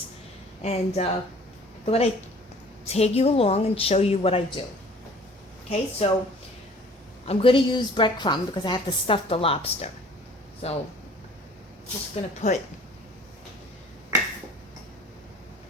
And I thought I'd take you along and show you what I do. Okay, so I'm going to use breadcrumb because I have to stuff the lobster. So just going to put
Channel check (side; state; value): both; normal; correlation 0.50